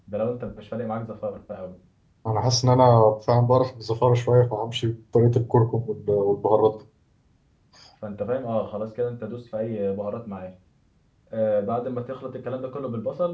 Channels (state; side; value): identical; both; correlation 1.00